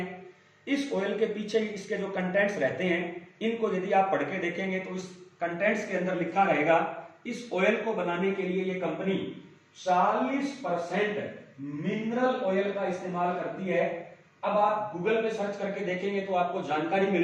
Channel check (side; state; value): both; identical; correlation 1.00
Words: इस ऑयल के पीछे इसके जो कंटेंट्स रहते हैं, इनको यदि आप पढ़ के देखेंगे तो इस कंटेंट्स के अंदर लिखा रहेगा, इस ऑयल को बनाने के लिए ये कंपनी 40% मिनरल ऑयल का इस्तेमाल करती है। अब आप गूगल पे सर्च करके देखेंगे तो आपको जानकारी